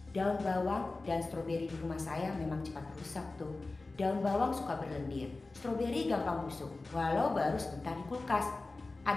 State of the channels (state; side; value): quieter; right; 3.4 dB